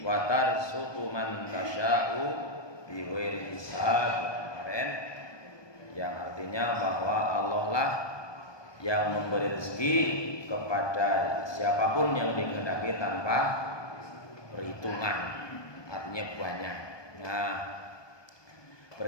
wa tarzuqu man tasya'u bighairi hisab kemarin, yang artinya bahwa Allah lah yang memberi rezeki kepada siapapun yang dikehendaki tanpa perhitungan, artinya banyak. Nah,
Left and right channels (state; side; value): late; right; 1.2 ms